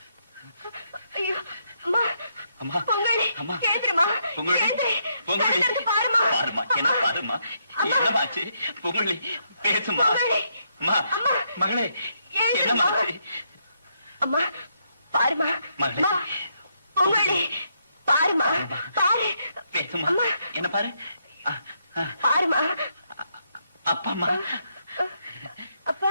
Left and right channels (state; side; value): inverted; both; correlation -0.77